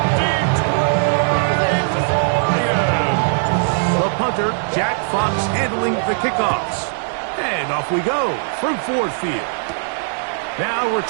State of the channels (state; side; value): silent; left; digital silence